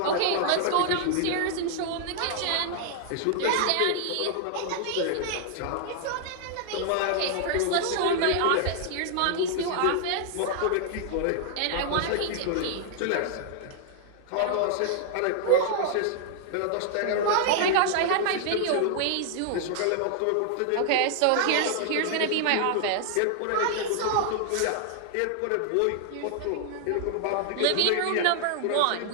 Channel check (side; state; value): both; different; correlation 0.00